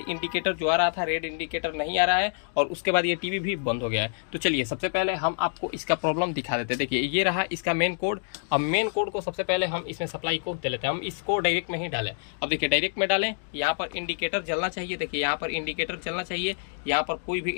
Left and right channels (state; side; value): silent; right; digital silence